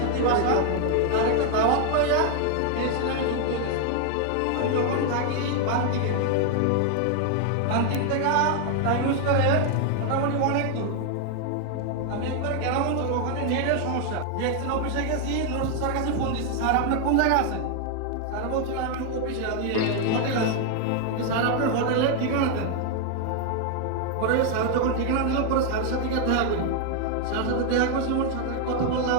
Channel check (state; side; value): different; both; correlation 0.00